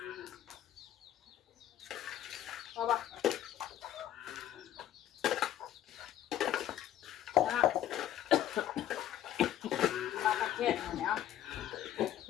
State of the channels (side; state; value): right; quieter; 11.8 dB